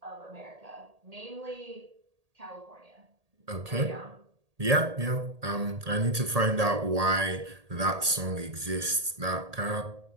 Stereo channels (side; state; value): left; late; 1.8 ms